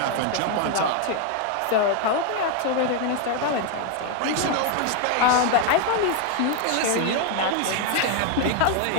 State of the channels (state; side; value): different; both; correlation 0.01